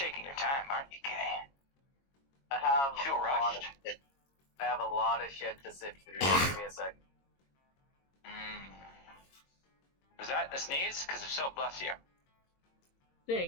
your time, aren't you, Kay? I have You feel a lot rushed? of shit. I have a lot of shit to sift through. Give me a sec. Was that a sneeze? Because if so, bless you. Of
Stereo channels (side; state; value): right; late; 22 ms